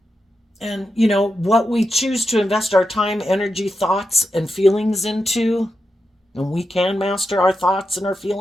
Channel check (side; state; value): both; normal; correlation 0.88